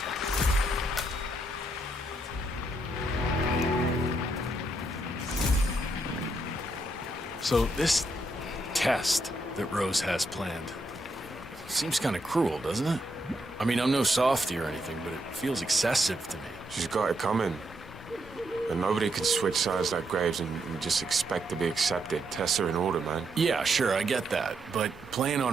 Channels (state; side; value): normal; both; correlation 0.78